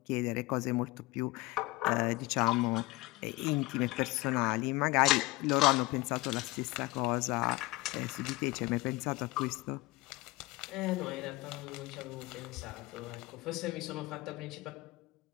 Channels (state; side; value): quieter; right; 20.8 dB